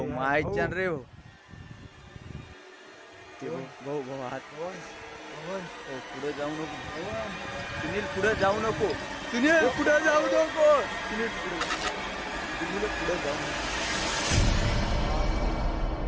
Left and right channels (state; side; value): identical; both; correlation 1.00